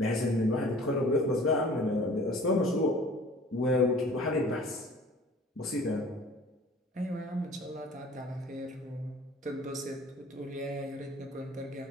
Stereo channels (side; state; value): both; normal; correlation 0.48